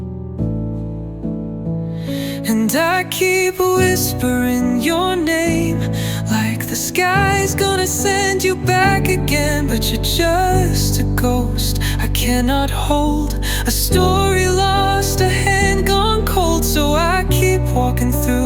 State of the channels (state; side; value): identical; both; correlation 1.00